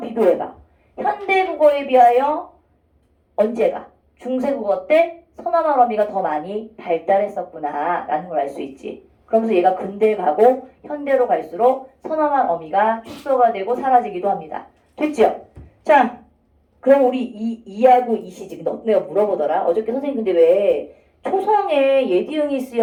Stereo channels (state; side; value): identical; both; correlation 1.00